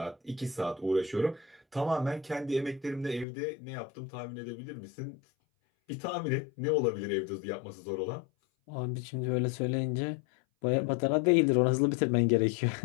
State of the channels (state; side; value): drops out; right; at 3.2 s